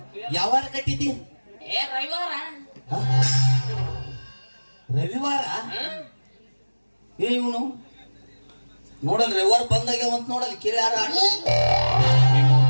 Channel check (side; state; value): both; inverted; correlation -1.00